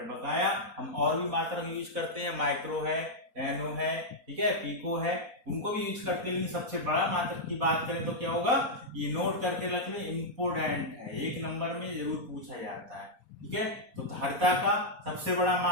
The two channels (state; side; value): late; left; 4.1 ms